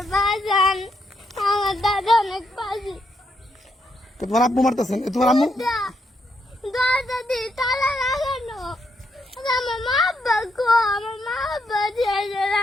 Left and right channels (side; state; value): both; normal; correlation 0.78